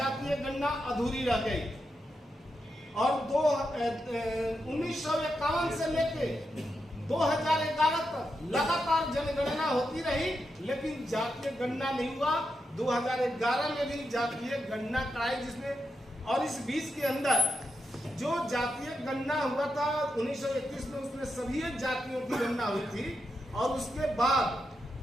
गणना अधूरी रह गई। और 1951 से लेके 2011 तक लगातार जनगणना होती रही, लेकिन जातीय गणना नहीं हुआ। 2011 में भी जातीय गणना कराई जिसमें, और इस बीच के अंदर जो जातीय गणना हुआ था 1931 में, उसमें सभी जातियों की गणना हुई थी। और उसके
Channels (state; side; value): normal; both; correlation 0.85